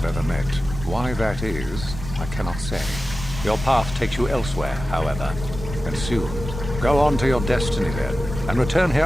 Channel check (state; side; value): normal; both; correlation 0.94